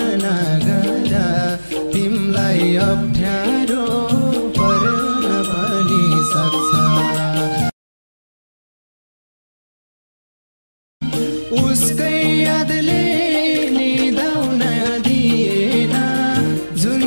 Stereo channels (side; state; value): both; inverted; correlation -1.00